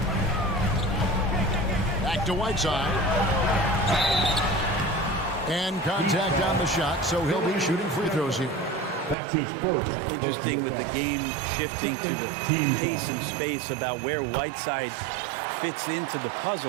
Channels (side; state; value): left; drops out; at 9.2 s